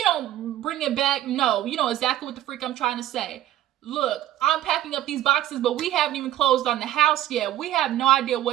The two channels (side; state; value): left; quieter; 13.1 dB